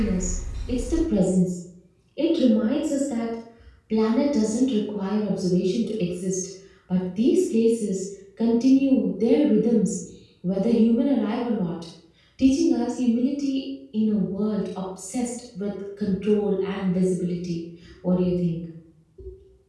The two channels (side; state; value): both; identical; correlation 1.00